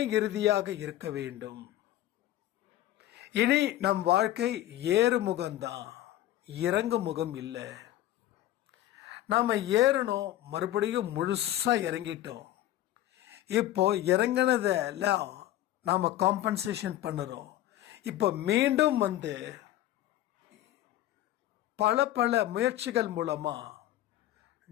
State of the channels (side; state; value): right; quieter; 13.7 dB